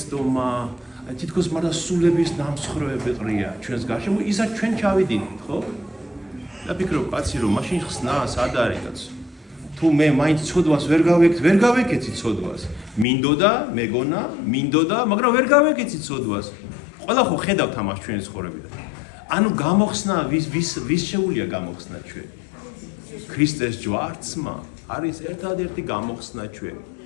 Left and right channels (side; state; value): right; drops out; at 13.1 s